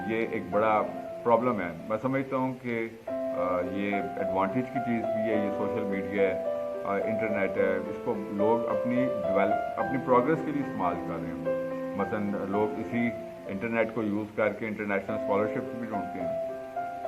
یہ ایک بڑا پرابلم ہے. میں سمجھتا ہوں کہ یہ ایڈوانٹیج کی چیز بھی ہے, یہ سوشل میڈیا ہے, انٹرنیٹ ہے, اس کو لوگ اپنی پروگرس کے لیے استعمال کر رہے ہیں. مثلا لوگ اسی انٹرنیٹ کو یوز کر کے انٹرنیشنل اسکالرشپس بھی ڈھونڈتے ہیں,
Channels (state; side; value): identical; both; correlation 1.00